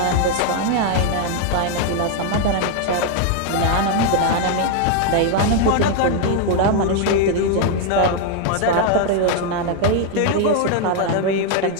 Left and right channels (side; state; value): both; different; correlation 0.00